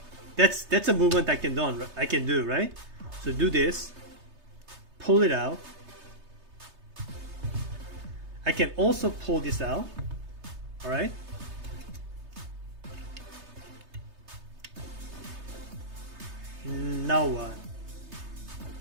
that's a movement I can do, right? So do this, pull it out. I can also pull this out. Alright, now what?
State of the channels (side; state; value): left; late; 3.3 ms